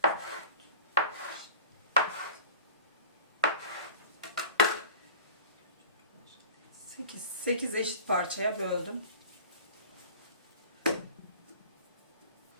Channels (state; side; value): inverted; both; correlation -0.42